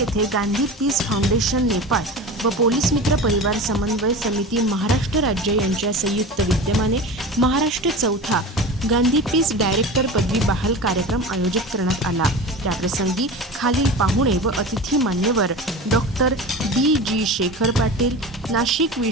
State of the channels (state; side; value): normal; both; correlation 0.31